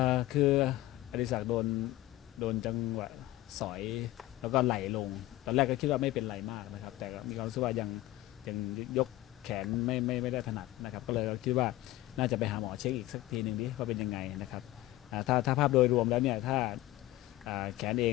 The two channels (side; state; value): right; quieter; 16.4 dB